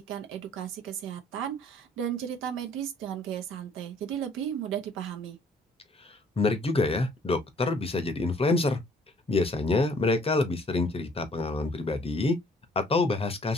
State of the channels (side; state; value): both; normal; correlation 0.59